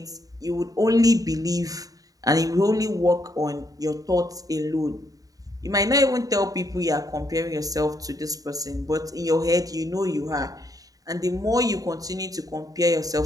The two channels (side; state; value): left; late; 0.18 ms